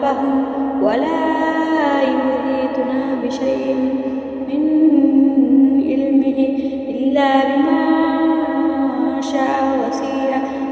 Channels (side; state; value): both; identical; correlation 1.00